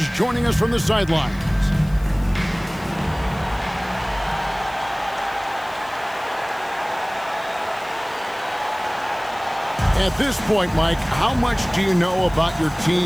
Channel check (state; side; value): noise; left; hiss, 23 dB below the sound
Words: joining us from the sidelines. At this point, Mike, how much do you know about your